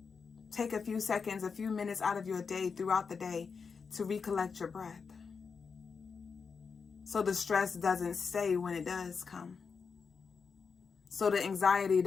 Take a few seconds, a few minutes out of your day, throughout the day, to recollect your breath, so the stress doesn't stay when it does come, so the anxiety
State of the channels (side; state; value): right; quieter; 5.5 dB